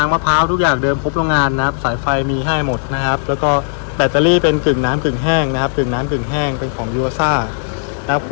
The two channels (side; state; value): right; silent; digital silence